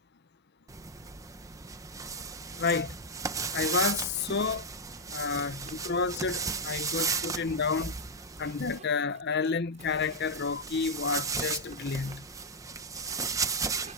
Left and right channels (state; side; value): normal; both; correlation -0.01